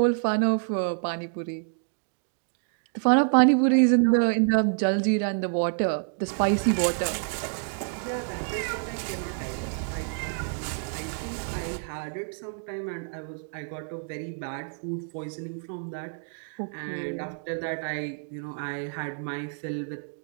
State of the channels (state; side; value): silent; left; 59 dB below the other